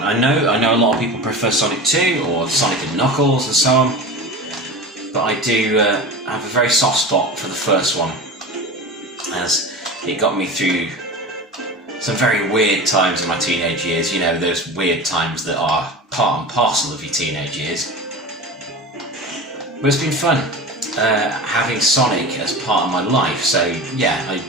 I know a lot of people prefer Sonic 2 or Sonic and Knuckles and so on, but I do have a very soft spot for the first one, as it got me through some very weird times in my teenage years. You know, those weird times that are part and parcel of your teenage years. But it's been fun. Having Sonic as part of my life. So yeah, I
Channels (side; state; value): both; normal; correlation 0.31